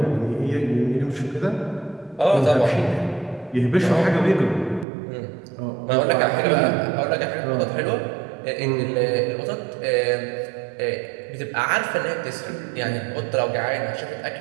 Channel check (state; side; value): drops out; left; at 4.9 s